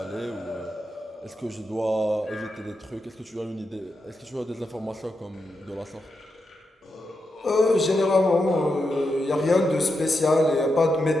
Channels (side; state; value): both; normal; correlation 0.86